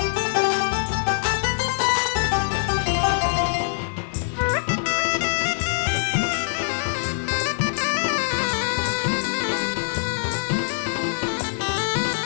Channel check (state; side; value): silent; right; 63 dB below the other